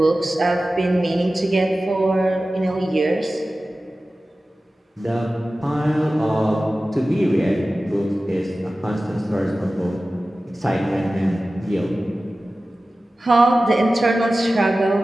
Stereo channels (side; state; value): both; normal; correlation 0.96